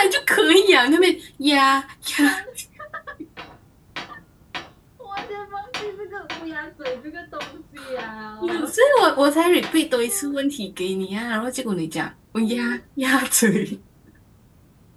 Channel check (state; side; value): identical; both; correlation 1.00